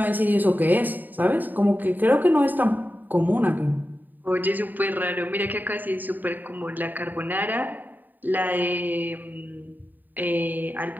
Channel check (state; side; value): late; left; 0.087 ms